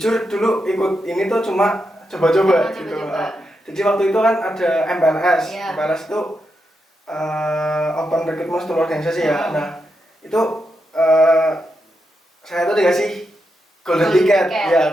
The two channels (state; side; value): normal; both; correlation 0.85